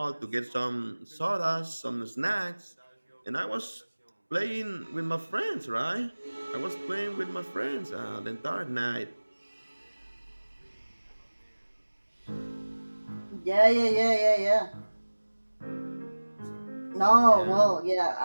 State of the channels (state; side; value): inverted; both; correlation -1.00